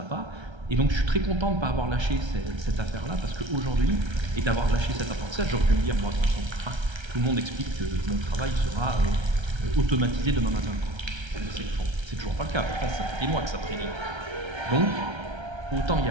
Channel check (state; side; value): late; left; 1.3 ms